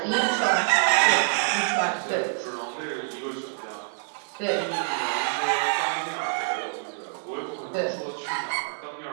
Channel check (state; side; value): silent; left; 61 dB below the other